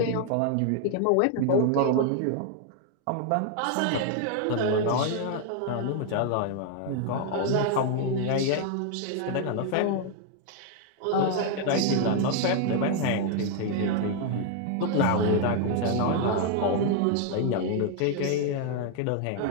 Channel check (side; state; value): both; different; correlation 0.00